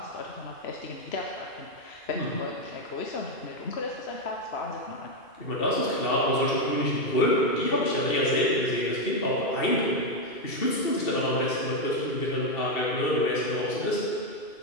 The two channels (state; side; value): late; right; 2.7 ms